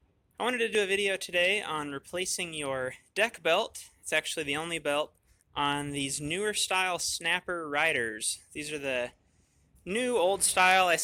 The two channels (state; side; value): identical; both; correlation 1.00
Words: I wanted to do a video today on replacing your deck belt. It's actually the only belt on these newer style snapper riders. These are the new old style. I